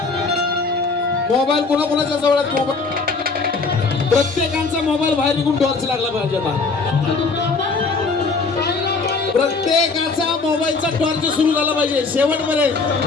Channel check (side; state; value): right; quieter; 4.1 dB